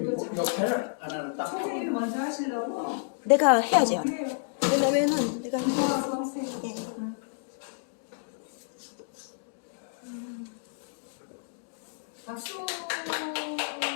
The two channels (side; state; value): right; silent; digital silence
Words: 역할을 안 하는 딱. 선생님이 먼저 하시려고? 내가 해야죠. 해요. 왜냐면은 내가 선생님. 예. 박수.